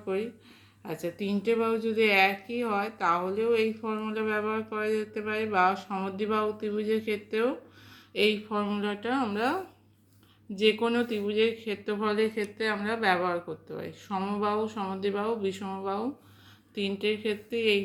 করি। আচ্ছা, তিনটে বাহু যদি একই হয় তাহলেও এই ফর্মুলা ব্যবহার করা যেতে পারে, বা সমদ্বিবাহু ত্রিভুজের ক্ষেত্রেও এই ফর্মুলাটা আমরা যে কোনো ত্রিভুজের ক্ষেত্রফলের ক্ষেত্রে আমরা ব্যবহার করতে পারি। সমবাহু, সমদ্বিবাহু, বিষমবাহু তিনটের ক্ষেত্রে এই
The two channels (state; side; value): identical; both; correlation 1.00